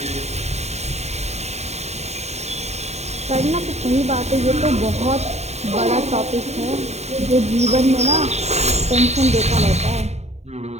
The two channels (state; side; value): late; left; 0.32 ms